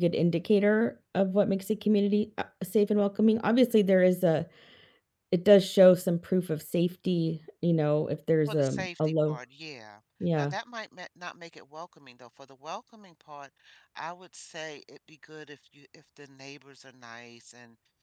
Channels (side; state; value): both; identical; correlation 1.00